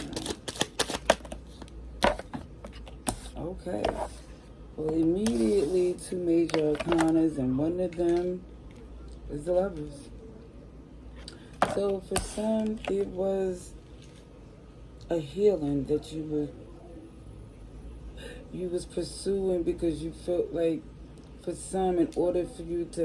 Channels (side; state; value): both; identical; correlation 1.00